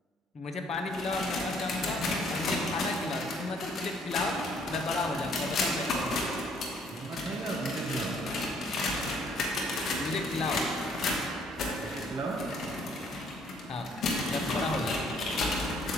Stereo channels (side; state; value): both; normal; correlation 0.63